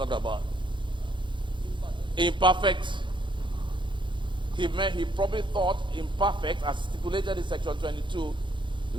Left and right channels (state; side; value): late; left; 0.23 ms